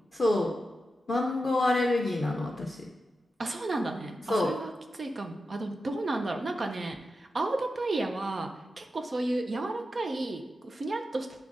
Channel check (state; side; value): normal; both; correlation 0.90